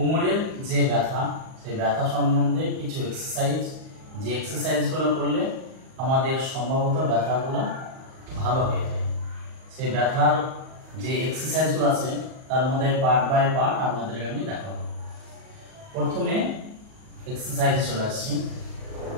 যে ব্যথা, সেই ব্যথা সম্বন্ধে কিছু এক্সারসাইজ, যে এক্সারসাইজগুলো করলে আমাদের সম্ভবত ব্যথাগুলো ভালো হয়ে যায়। সেই ব্যথার যে এক্সারসাইজগুলো আছে তার মধ্যে পার্ট বাই পার্ট আপনাদেরকে আমি দেখাবো। প্রথমে এক্সারসাইজে চলে আসছি।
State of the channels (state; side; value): late; left; 38 ms